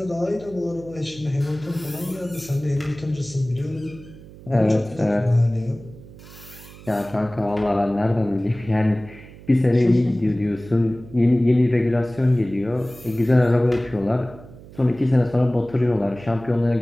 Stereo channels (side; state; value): right; noise; hum, 19 dB below the sound